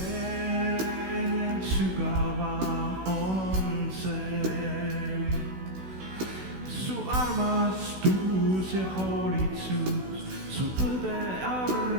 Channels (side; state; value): left; late; 16 ms